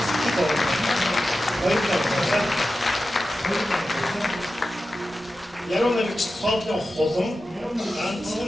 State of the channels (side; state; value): both; normal; correlation 0.93